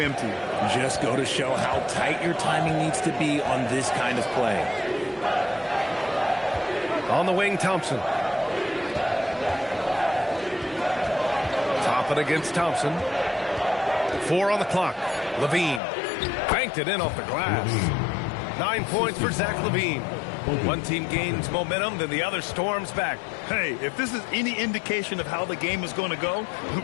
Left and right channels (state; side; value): drops out; right; at 15.8 s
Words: Just go to show how tight your timing needs to be on this kind of play. On the wing, Thompson. Toppin against Thompson. 4 on the clock. Levine banked it in off the glass. 9 points for Zach Levine. One team gains momentum, then the other storms back. Hey, if this is any indication of how the game is going to go,